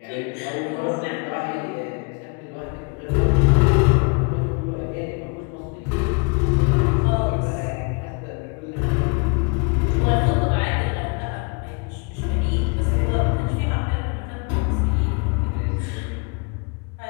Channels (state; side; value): quieter; right; 33.2 dB